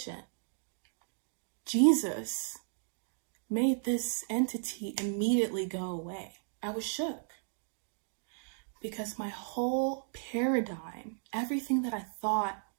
Jesus made this entity immediately go away. I was shook. Because my whole paradigm, everything that I thought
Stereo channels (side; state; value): left; silent; digital silence